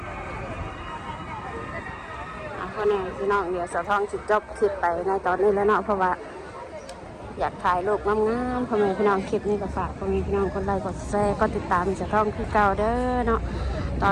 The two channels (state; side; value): identical; both; correlation 1.00